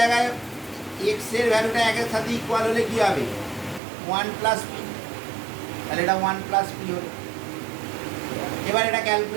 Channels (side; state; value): left; drops out; at 3.8 s